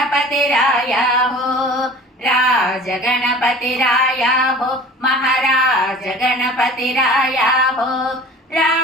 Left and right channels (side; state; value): both; normal; correlation 0.42